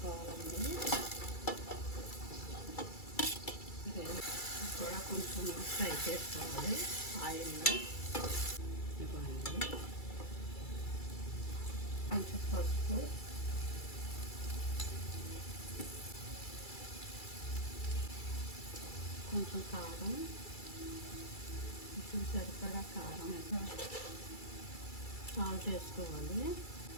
కూడా కొంచెం ఫ్రై చేసుకోవాలి ఆయిల్లో. ఇవ్వండి కొంచెం పసుపు, కొంచెం కారం, కొంచెం సరిపడా కారం సాల్ట్ వేసుకోవాలి.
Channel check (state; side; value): late; right; 2.3 ms